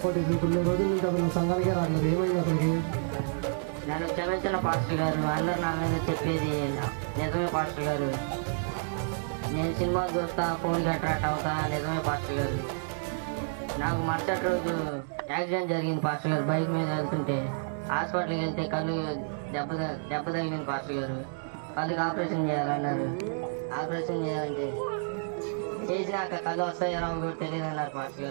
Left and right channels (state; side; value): silent; left; digital silence